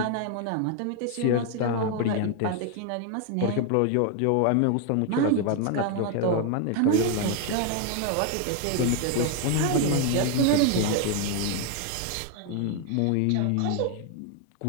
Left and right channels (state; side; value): different; both; correlation 0.01